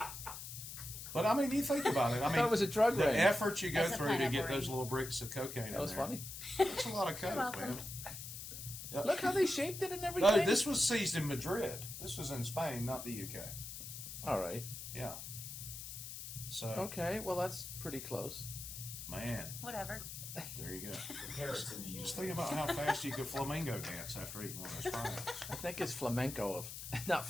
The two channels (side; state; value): left; noise; hiss, 9 dB below the sound